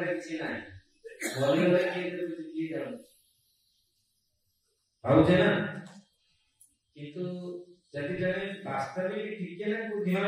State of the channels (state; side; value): identical; both; correlation 1.00